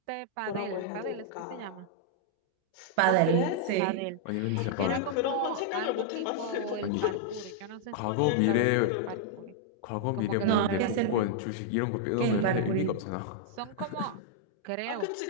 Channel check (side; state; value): both; different; correlation -0.01